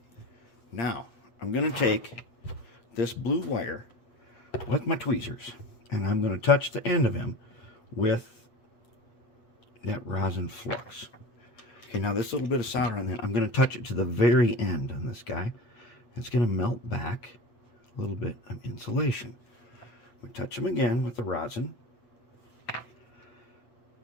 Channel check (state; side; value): late; right; 8.2 ms